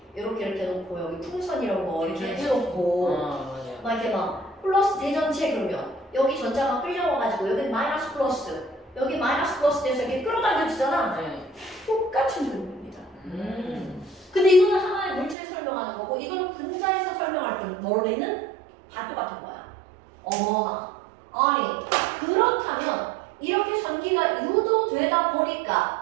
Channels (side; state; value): left; drops out; at 15.4 s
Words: 이렇게 놓고 여기 풍선이라고 거 이렇게 해놓고 맞아요. 막 이렇게 막 플러스 대전체 그러면 여기 전자가 끌려와가지고 여기 마이너스 플러스 여기 마이너스 플러스 돼서 이렇게 끌어당겨지잖아. 네. 똑같은 그림입니다. 근데 이거는 하나의 물질 설명하는 거고 이거는 분자에서 설명할 때 머리는 다 똑같은 거야. 어머나. 아니 그렇다면 이렇게 전기가 유도되다